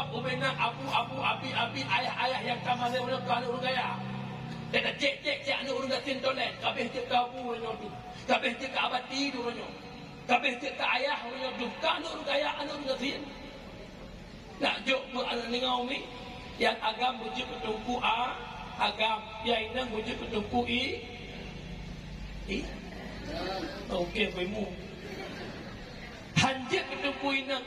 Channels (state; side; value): identical; both; correlation 1.00